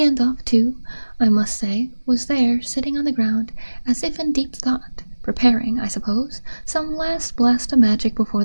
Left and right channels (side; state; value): both; inverted; correlation -1.00